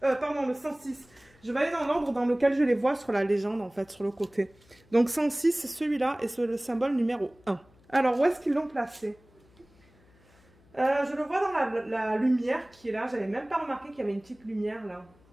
pardon, le 106. Je vais aller dans l'ordre dans lequel je les vois sur la légende, en fait, sur le côté. Donc, 106, c'est celui-là et c'est le symbole numéro 1. Alors, où est-ce qu'ils l'ont placé? Je le vois dans la lumière qui est là. J'avais même pas remarqué qu'il y avait une petite lumière là.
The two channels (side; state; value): left; noise; hum, 29 dB below the sound